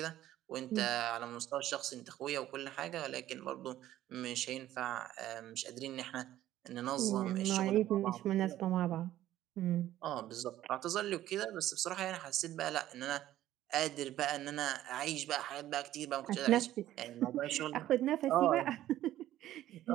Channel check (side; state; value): left; quieter; 13.5 dB